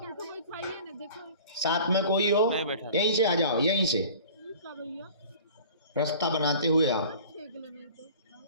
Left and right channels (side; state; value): both; inverted; correlation -0.44